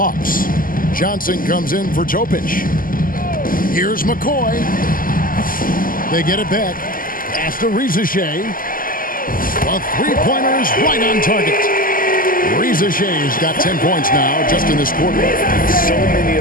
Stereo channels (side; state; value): right; late; 0.41 ms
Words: Johnson comes in for Topic. Here's McCoy. They get it back. Pass to Reza Shea. A three-pointer is right on target. Reza Shea's got 10 points now just in this quarter. So many